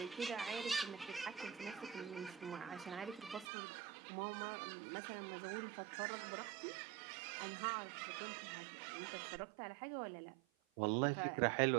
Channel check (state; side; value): drops out; left; at 3.5 s